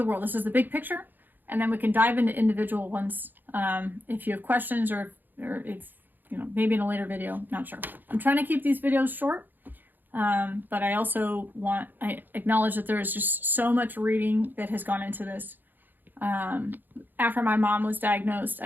world. This is the big picture. And then we can dive into individual ones if you have questions or if, you know, maybe in a later video, not sure. I'm trying to keep these videos short, but I also I acknowledge that there is just so much reading that has gone into this. After my mom was diagnosed,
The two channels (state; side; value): late; left; 0.089 ms